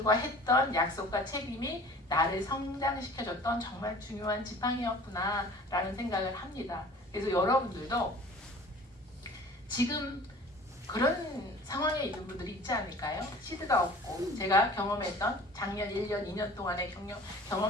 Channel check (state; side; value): normal; both; correlation 0.46